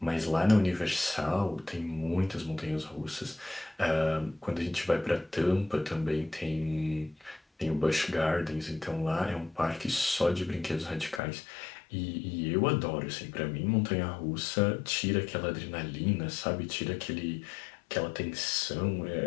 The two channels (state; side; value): drops out; right; at 11.2 s